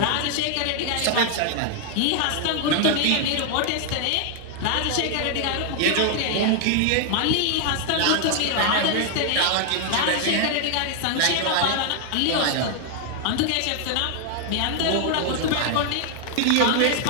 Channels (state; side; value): different; both; correlation 0.00